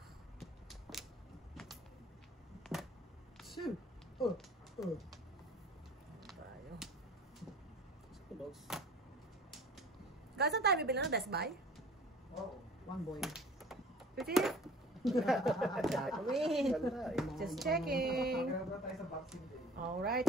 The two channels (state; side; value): normal; both; correlation 0.46